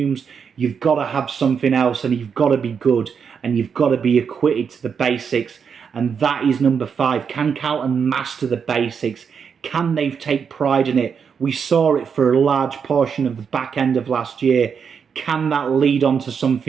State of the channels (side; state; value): left; quieter; 6.6 dB